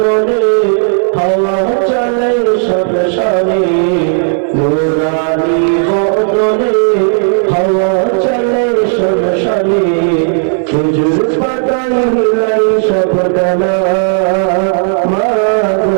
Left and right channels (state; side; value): silent; left; digital silence